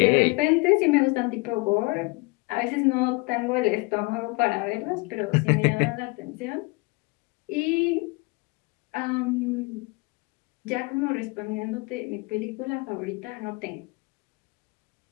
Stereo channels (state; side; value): quieter; right; 26.8 dB